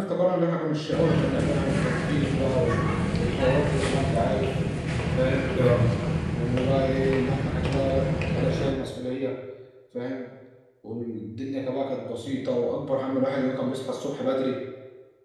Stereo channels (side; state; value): both; identical; correlation 1.00